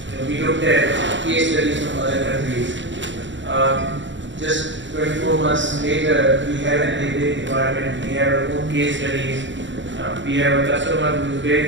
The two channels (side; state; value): left; late; 0.54 ms